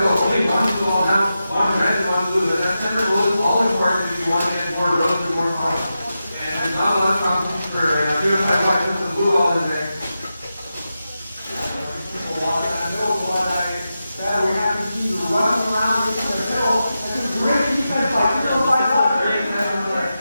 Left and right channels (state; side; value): inverted; both; correlation -0.90